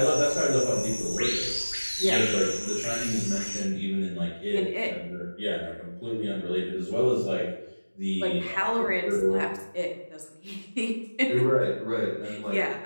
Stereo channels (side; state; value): both; inverted; correlation -1.00